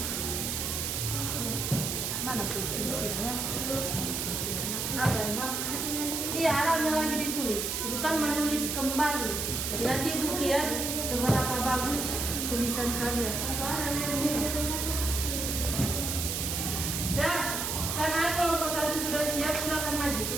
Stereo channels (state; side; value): noise; right; hiss, 1 dB below the sound